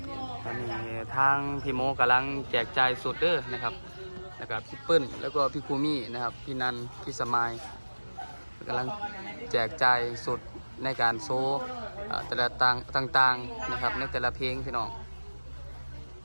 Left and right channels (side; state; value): both; inverted; correlation -1.00